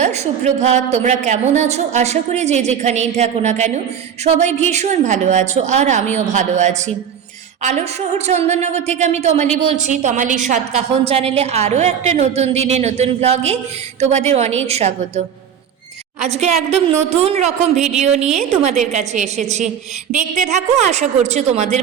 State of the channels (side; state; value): left; quieter; 8.2 dB